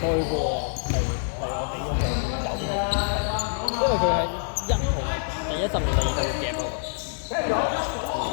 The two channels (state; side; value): silent; right; digital silence